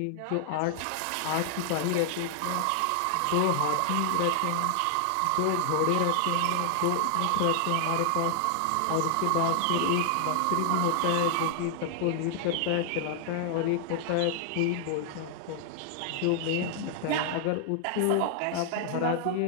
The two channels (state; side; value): different; both; correlation 0.00